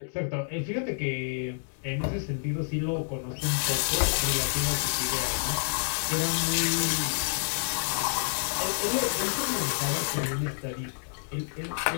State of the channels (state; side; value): silent; right; digital silence